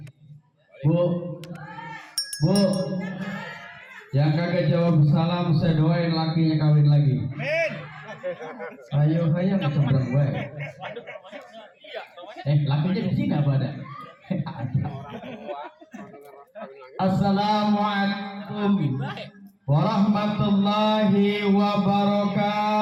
Bu, yang kagak jawab salam saya doain lakinya kawin lagi. Amin. Ayo ngecebrang gue. Lakinya di sini apa ada? Assalamualaikum warahmatullahi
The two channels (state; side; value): identical; both; correlation 1.00